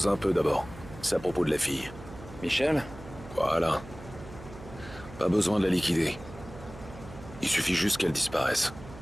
un peu d'abord. C'est à propos de la fille. Michel? Voilà. Pas besoin de la liquider. Il suffit juste qu'elle disparaisse.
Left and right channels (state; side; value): noise; right; hum, 16 dB below the sound